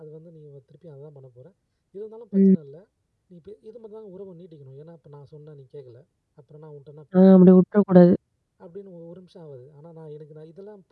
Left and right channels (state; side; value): identical; both; correlation 1.00